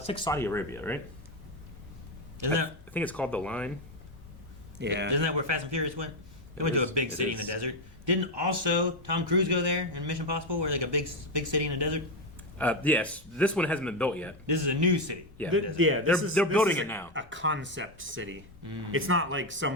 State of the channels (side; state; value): both; normal; correlation 0.09